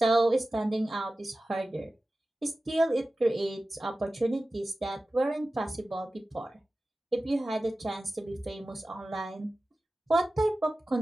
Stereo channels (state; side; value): normal; both; correlation 0.95